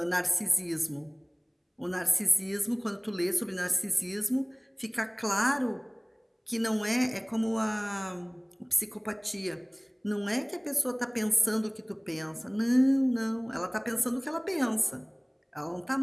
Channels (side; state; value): both; identical; correlation 1.00